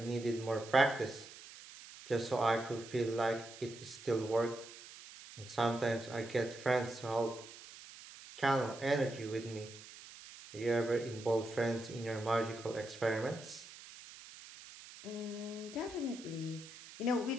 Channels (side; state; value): right; noise; hiss, 16 dB below the sound